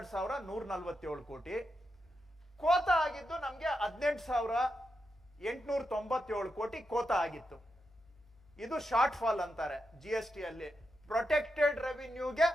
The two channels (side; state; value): right; noise; hum, 28 dB below the sound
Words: ಕೋಟಿ. ಕೋತ ಆಗಿದ್ದು ನಮ್ಗೆ 18,897 ಕೋಟಿ ಕೋತ ಆಗಿತ್ತು. ಇದು ಶಾರ್ಟ್ ಫಾಲ್ ಅಂತಾರೆ GST ಅಲ್ಲಿ. ಪ್ರೊಟೆಕ್ಟೆಡ್ ರೆವಿನ್ಯೂಗೆ